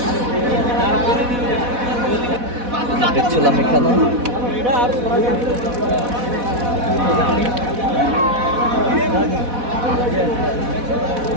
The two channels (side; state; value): left; late; 4.1 ms